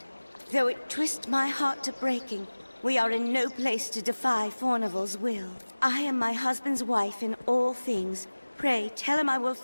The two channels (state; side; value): inverted; both; correlation -1.00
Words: Though it twists my heart to breaking, we are in no place to defy Fornival's will. I am my husband's wife in all things, Pray, tell him I will